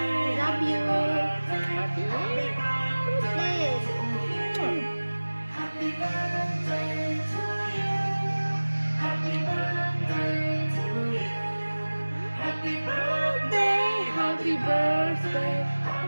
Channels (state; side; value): inverted; both; correlation -1.00